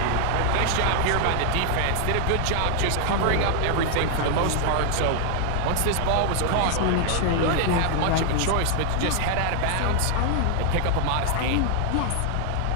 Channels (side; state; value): both; different; correlation 0.00